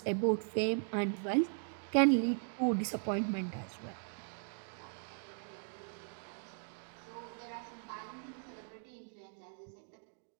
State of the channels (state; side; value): silent; left; 52 dB below the other